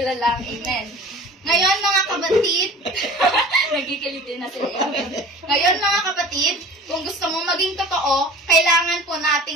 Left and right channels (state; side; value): normal; both; correlation 0.42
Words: lang. Amen. Ngayon mga kapatid, nagkikilitin na sila. Ngayon mga kapatid, kung gusto mong maging totoo, kailangan po